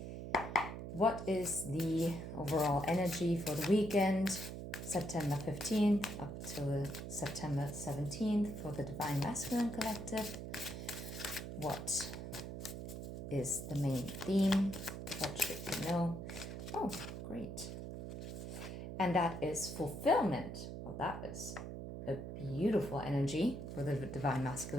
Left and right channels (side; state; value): right; noise; hum, 7 dB below the sound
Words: What is the overall energy for the weekend, September 15th up till September 17th for the Divine Masculine Collective? What is the main theme? What should you know? Oh, great. And that is fulfillment. Well, that is a beautiful energy for the Divine